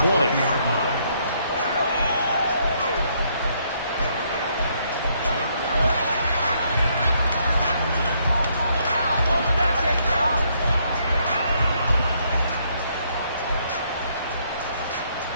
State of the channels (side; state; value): both; inverted; correlation -0.71